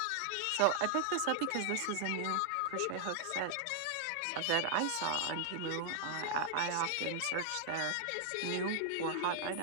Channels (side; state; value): both; different; correlation 0.00